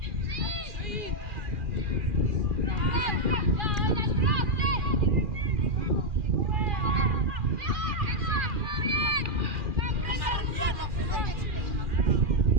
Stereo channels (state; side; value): late; left; 2.4 ms